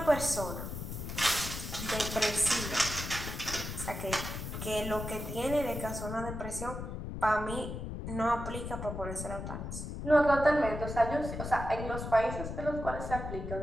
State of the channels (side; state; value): left; noise; rumble, 6 dB below the sound